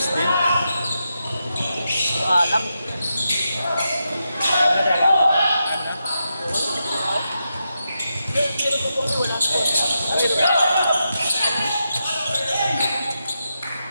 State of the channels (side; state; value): both; inverted; correlation -0.86